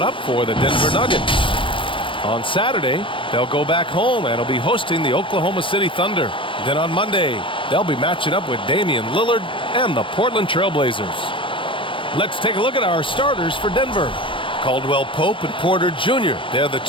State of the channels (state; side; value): late; right; 0.25 ms